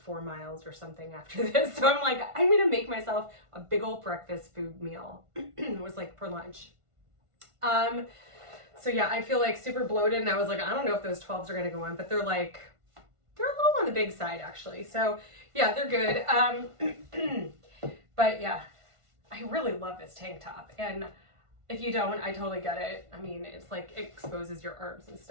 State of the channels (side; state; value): left; late; 1.5 ms